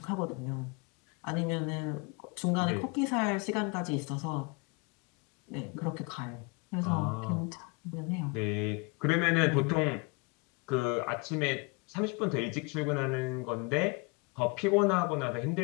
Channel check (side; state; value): right; quieter; 30.2 dB